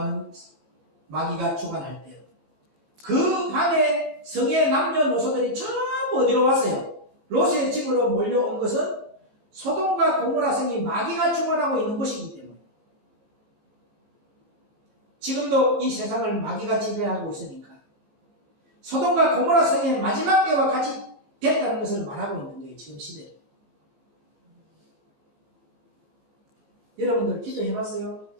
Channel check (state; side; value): late; left; 19 ms